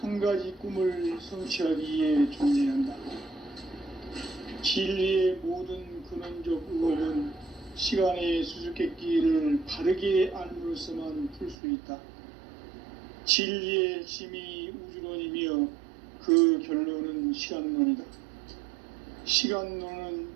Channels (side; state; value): left; drops out; at 11.6 s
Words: 가지 꿈을 성취하기 위해 존재한다. 진리의 모든 근원적 의혹은 시간의 수수께끼를 바르게 알므로써만 풀 수 있다. 진리의 핵심이 우주론이며 그 결론은 시간론이다. 시간론은